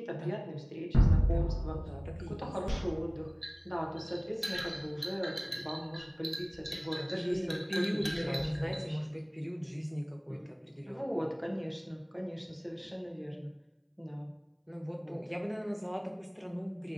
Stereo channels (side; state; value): both; identical; correlation 1.00